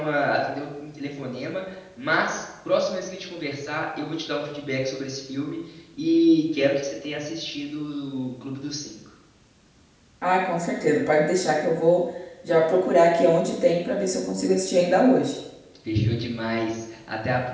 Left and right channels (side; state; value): both; identical; correlation 1.00